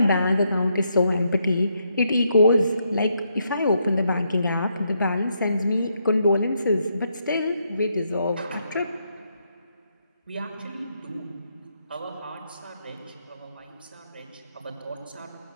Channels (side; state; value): both; inverted; correlation -0.78